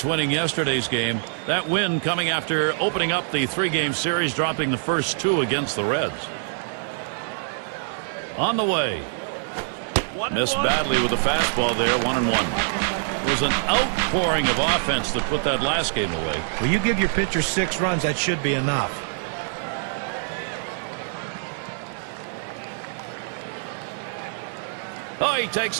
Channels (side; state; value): left; silent; 59 dB below the other